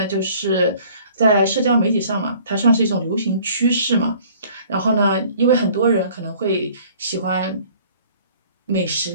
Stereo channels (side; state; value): both; inverted; correlation -0.53